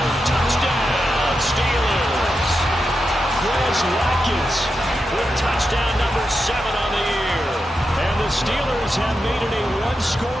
Touchdown, Steelers. Chris Watkins with touchdown number 7 on the year. And the Steelers have made it a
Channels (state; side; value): normal; both; correlation 0.88